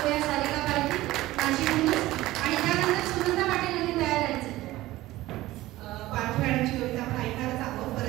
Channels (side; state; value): left; quieter; 17.0 dB